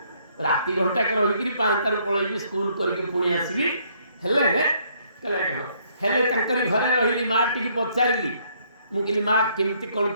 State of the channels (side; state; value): both; inverted; correlation -0.67